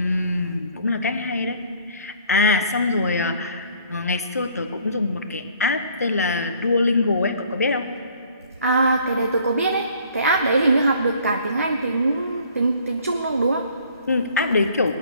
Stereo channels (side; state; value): both; inverted; correlation -0.57